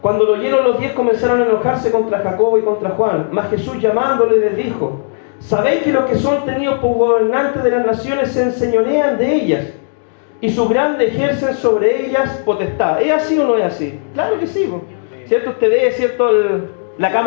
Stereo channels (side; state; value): right; silent; digital silence